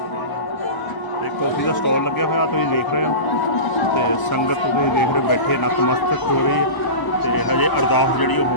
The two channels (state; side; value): late; right; 1.0 ms